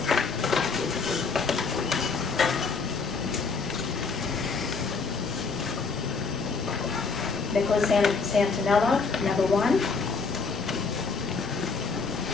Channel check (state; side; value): quieter; right; 4.7 dB